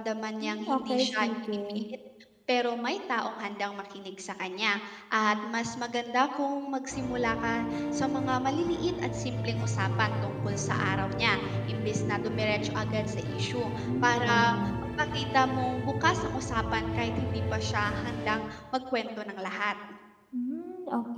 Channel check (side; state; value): both; identical; correlation 1.00